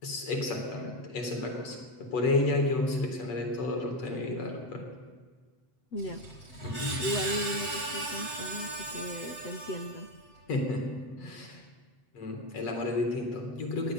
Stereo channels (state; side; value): late; right; 7.9 ms